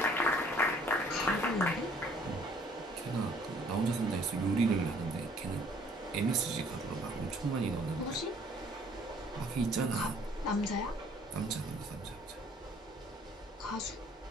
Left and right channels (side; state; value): both; normal; correlation 0.58